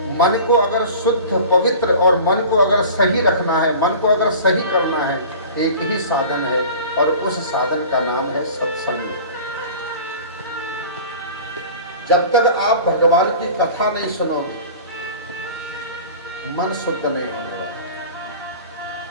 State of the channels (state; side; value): inverted; both; correlation -0.40